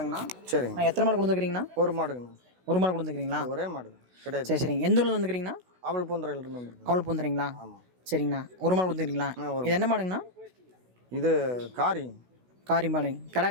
சரிங்க. நான் எத்தனை மாடு கொண்டு வந்துக்கிறீங்கண்ணா? ஒரு மாடுங்கண்ணா. ஒரு மாடு கொண்டு வந்துக்கிறீங்களா? ஒரே மாடு கிடையாது. சரி சரிங்க. எந்த ஊர்ல வந்துக்கிறீங்கண்ணா? அவள் பூந்தரையிலிருந்து வந்துருக்கேன். அவள் பூந்துறீங்களா? ஆமாம். சரிங்கண்ணா. ஒரு மாடு கொடுத்துக்கிறீங்களா? இது என்ன மாடுங்கண்ணா? இது காரி மாடு.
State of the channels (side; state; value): left; late; 16 ms